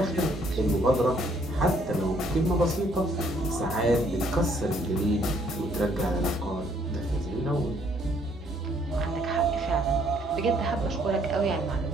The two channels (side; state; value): both; normal; correlation 0.66